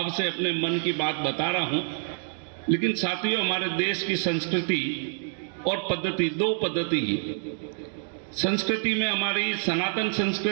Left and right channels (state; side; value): silent; left; 60 dB below the other